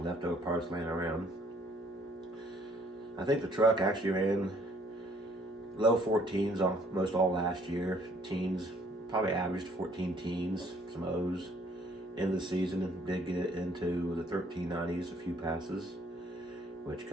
leftover parts laying around. I think the truck actually ran low 14s almost all last year. Teens, probably averaged 14 teens, some O's. End of the season, and did get it into the 1390s, a few passes, which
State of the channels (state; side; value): normal; both; correlation 0.62